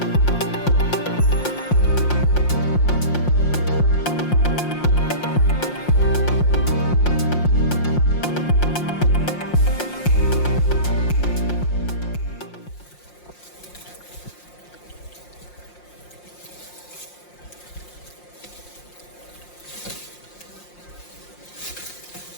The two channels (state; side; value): late; right; 5.6 ms